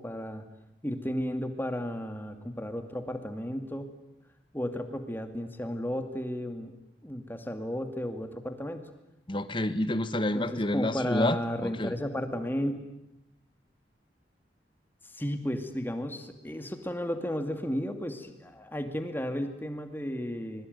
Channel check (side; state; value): both; normal; correlation 0.82